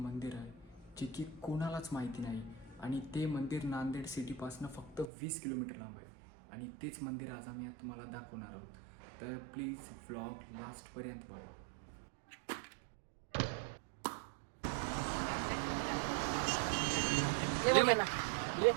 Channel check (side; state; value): left; drops out; at 5.1 s